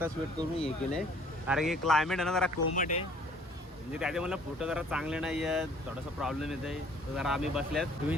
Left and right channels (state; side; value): normal; both; correlation 0.56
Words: वेट करून हे केले कारण की क्लायमेट आहे ना जरा कोमट आहे. म्हणजे त्याचे मला फोटो जरा चांगले नाही आहेत, थोडासा प्रॉब्लेम येत आहे. तर जरा आम्ही बसल्यात